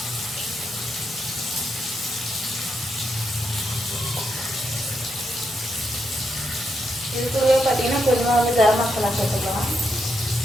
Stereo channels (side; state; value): both; normal; correlation 0.81